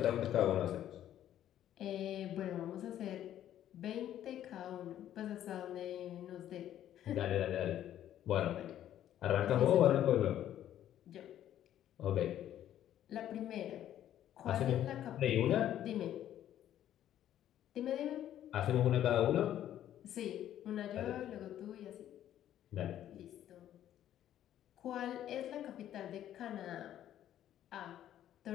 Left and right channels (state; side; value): quieter; right; 11.6 dB